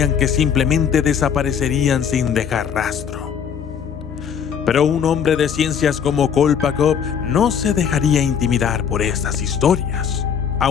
que simplemente desaparecerían sin dejar rastro. Pero un hombre de ciencias como Kolpakov no se dejaría intimidar por estas historias.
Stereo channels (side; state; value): right; quieter; 7.6 dB